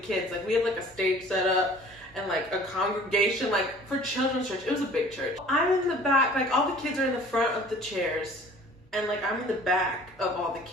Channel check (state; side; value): normal; both; correlation 0.49